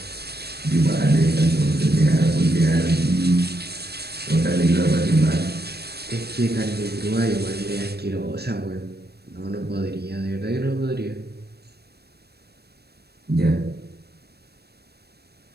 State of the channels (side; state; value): left; late; 0.47 ms